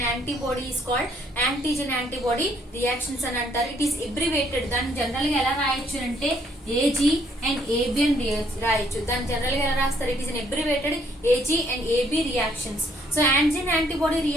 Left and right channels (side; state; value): both; normal; correlation 0.67